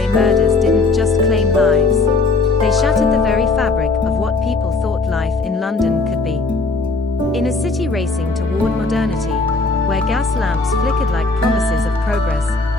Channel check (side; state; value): right; quieter; 3.6 dB